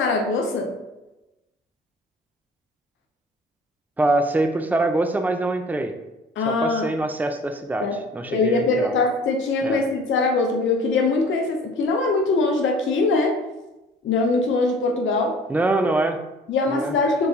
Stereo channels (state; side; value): normal; both; correlation 0.47